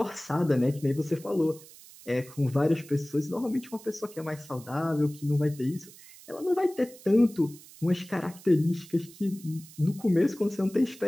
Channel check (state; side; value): noise; right; hiss, 20 dB below the sound